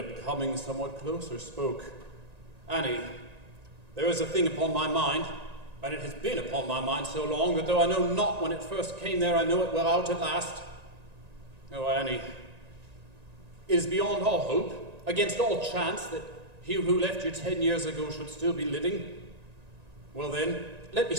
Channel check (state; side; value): late; left; 1.9 ms